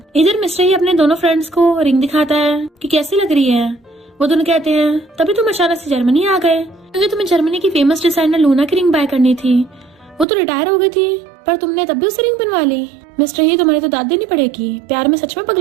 इधर मिस्टर ही अपने दोनों फ्रेंड्स को रिंग दिखाता है कि कैसी लग रही है। वो दोनों कहते हैं तभी तुम अचानक से जर्मनी आ गए क्योंकि तुम्हें जर्मनी की फेमस डिजाइनर लूना की रिंग बाय करनी थी। वो तो रिटायर हो गई थी पर तुमने तब भी उससे रिंग बनवा ली। मिस्टर ही तुम्हारी तो दाद देनी पड़ेगी, प्यार में सच में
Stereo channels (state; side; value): drops out; left; at 10.2 s